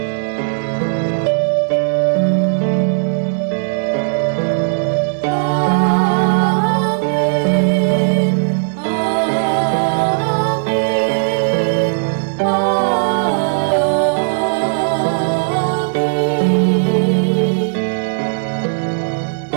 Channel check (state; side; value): silent; left; digital silence